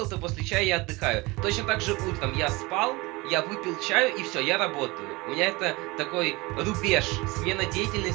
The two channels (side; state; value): left; quieter; 23.6 dB